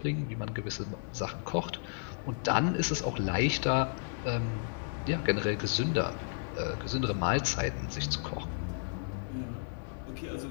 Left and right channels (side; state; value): right; silent; digital silence